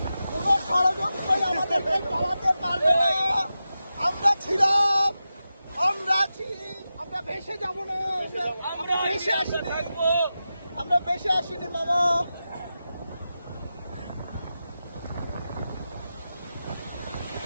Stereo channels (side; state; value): both; inverted; correlation -0.92